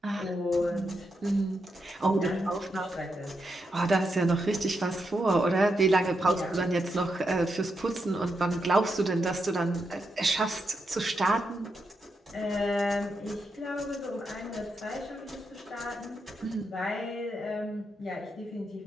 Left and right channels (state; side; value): normal; both; correlation 0.84